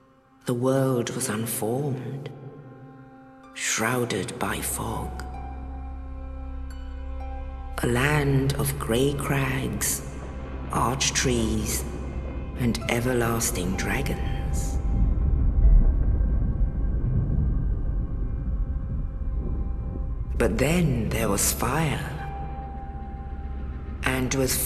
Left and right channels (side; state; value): both; identical; correlation 1.00